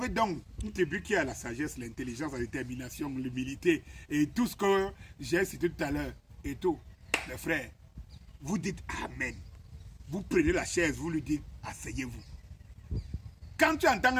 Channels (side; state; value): both; identical; correlation 1.00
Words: donc une tribu qui a la sagesse, l'intelligence, la détermination, l'humilité et tout ce que j'ai cité tout à l'heure et tout, les frères, vous dites Amen. Vous prenez la chaise, vous lui dites asseyez-vous. Quand tu entends